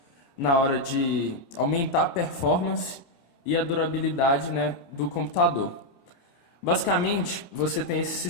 na hora de aumentar a performance e a durabilidade, né, do computador. Basicamente, você tem esse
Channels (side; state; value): right; late; 29 ms